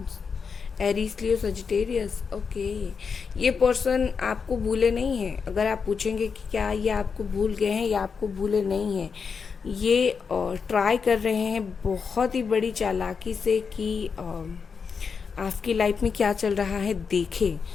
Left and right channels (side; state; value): right; quieter; 5.7 dB